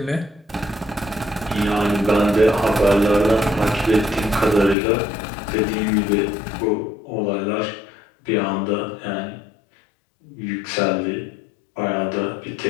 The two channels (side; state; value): right; drops out; at 4.8 s